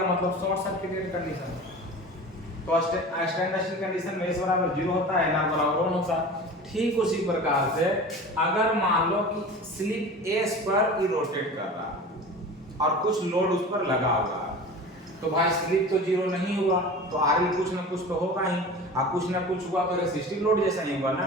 मतलब शॉर्ट सर्किटेड कंडीशन। तो स्टैंड स्टिल कंडीशन में S बराबर 0 होता है, NR बराबर 1 होता है। ठीक उसी प्रकार से अगर मान लो कि स्लिप S पर ही रोटेट कर रहा है और कुछ लोड उस पर लगा हुआ है, तो भाई स्लिप तो 0 नहीं हुआ, तो RL कुछ ना कुछ तो होगा ही, और कुछ ना कुछ हुआ तो रेसिस्टिव लोड जैसा नहीं हुआ ना।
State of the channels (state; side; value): normal; both; correlation 0.36